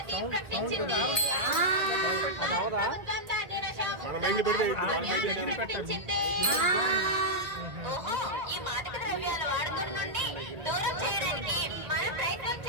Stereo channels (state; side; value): late; left; 2.1 ms